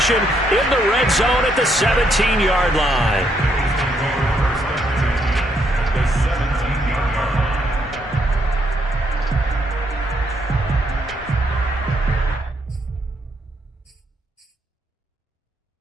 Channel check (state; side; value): normal; both; correlation 0.74